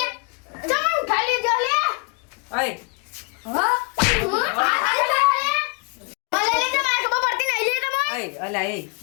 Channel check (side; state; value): right; quieter; 33.5 dB